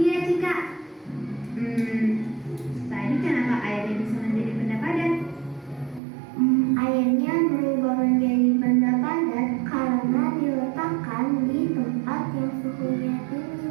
Cika. Tadi kenapa airnya bisa menjadi benda padat? Airnya berubah menjadi benda padat karena diletakkan di tempat yang suhunya tinggi,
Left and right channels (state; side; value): drops out; left; at 6.0 s